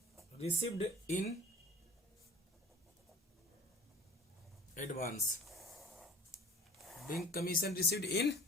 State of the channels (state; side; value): normal; both; correlation 0.45